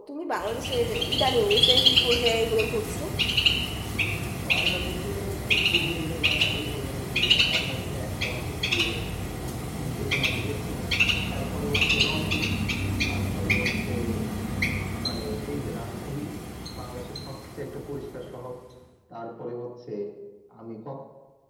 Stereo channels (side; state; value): both; identical; correlation 1.00